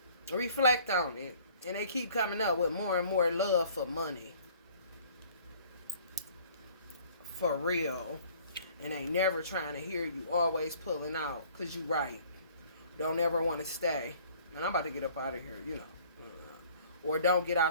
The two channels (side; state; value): both; inverted; correlation -0.54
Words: Reflect on it. And they keep coming up with more and more love for money. For real. And they never trying to hear you. Always pulling out. Because you right. Don't ever want to stay. Man, I'm about to get up out of here, you know. Or don't get